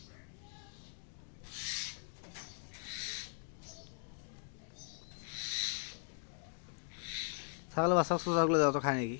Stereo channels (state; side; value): silent; right; 52 dB below the other